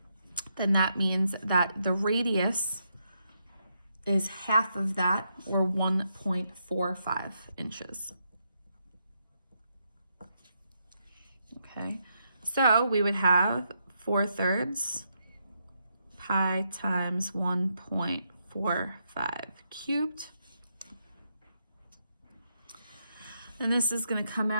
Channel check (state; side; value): inverted; both; correlation -0.80